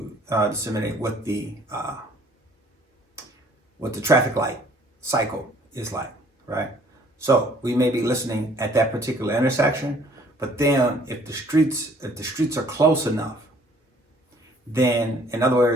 disseminate what the traffic light cycle is like, right? So we may be listening at that particular intersection, but then if the streets are close enough, then in other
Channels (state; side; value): normal; both; correlation 0.59